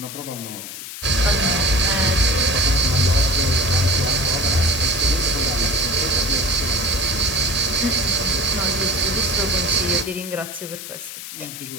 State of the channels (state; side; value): noise; left; hiss, 11 dB below the sound